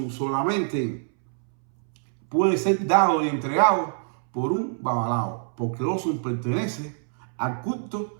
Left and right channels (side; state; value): left; silent; 62 dB below the other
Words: solamente puede ser dado y entregado por un babalao? Porque Osun pertenece al culto